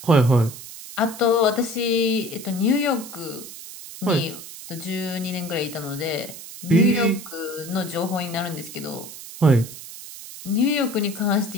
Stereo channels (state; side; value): noise; right; hiss, 13 dB below the sound